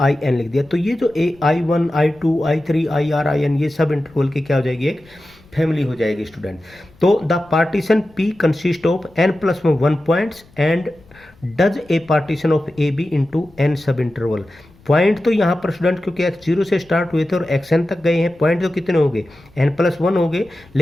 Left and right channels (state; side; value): noise; left; rumble, 27 dB below the sound